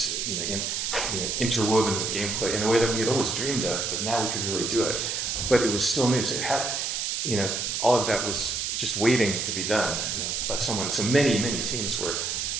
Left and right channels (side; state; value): right; noise; hiss, 1 dB below the sound